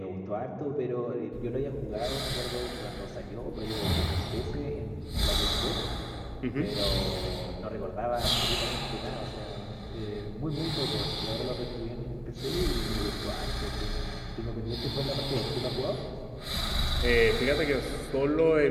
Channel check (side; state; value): both; identical; correlation 1.00